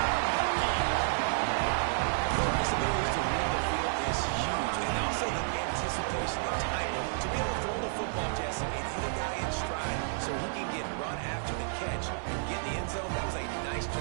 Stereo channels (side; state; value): left; silent; digital silence